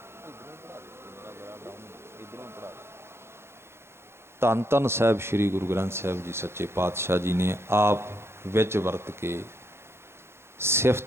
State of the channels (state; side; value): late; left; 0.12 ms